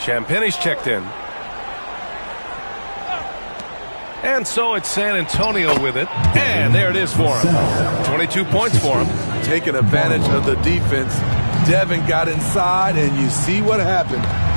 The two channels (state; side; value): inverted; both; correlation -1.00